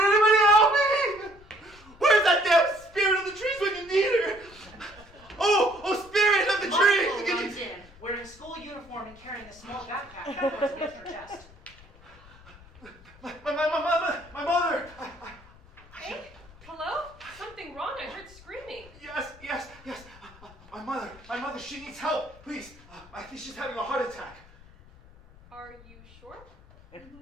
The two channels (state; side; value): noise; left; rumble, 23 dB below the sound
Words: help me? Where's that damn spirit of the trees when you need her? Oh, spirit of the Michael trees! runs in, wearing school uniform and carrying a small backpack that goes against her chest. My mother! Hey, hello? Something wrong? I heard screaming. Yes. My mother, she needs help. Please, I think she's having a heart attack. Are you sure?